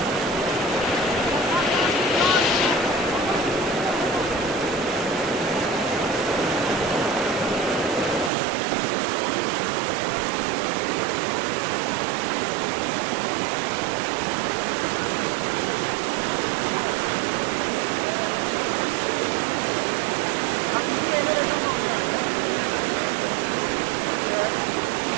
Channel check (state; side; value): drops out; left; at 8.3 s